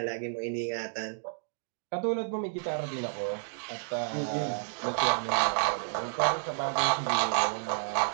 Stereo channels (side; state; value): left; silent; digital silence